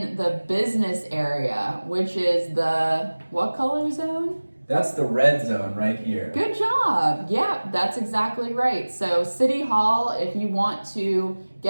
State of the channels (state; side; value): inverted; both; correlation -1.00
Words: the business area, which is the what color zone? That's the red zone right here. Good job. Yeah, that's exactly right. So City Hall, if you want to